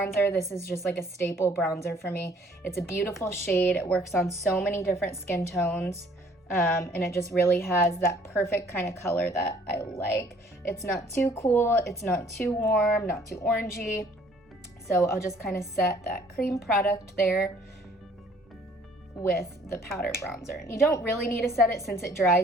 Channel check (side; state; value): both; normal; correlation 0.59